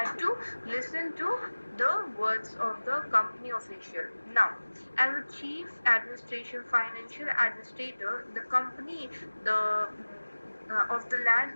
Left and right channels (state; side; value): inverted; both; correlation -1.00